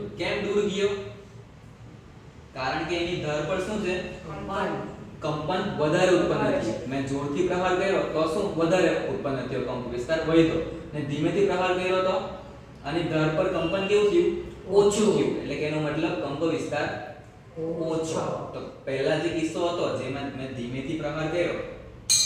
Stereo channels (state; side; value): identical; both; correlation 1.00